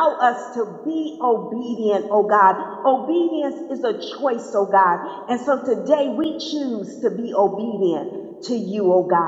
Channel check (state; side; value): identical; both; correlation 1.00